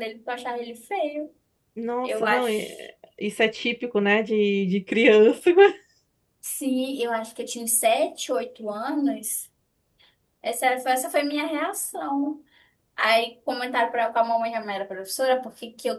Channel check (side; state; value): both; identical; correlation 1.00